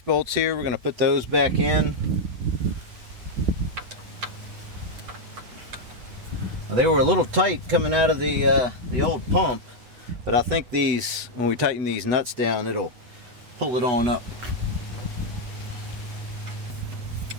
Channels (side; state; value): left; late; 8.1 ms